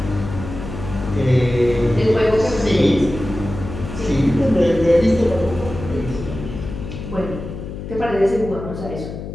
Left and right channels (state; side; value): noise; left; hum, 9 dB below the sound